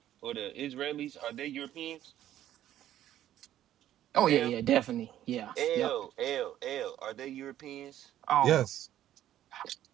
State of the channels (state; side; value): quieter; left; 12.2 dB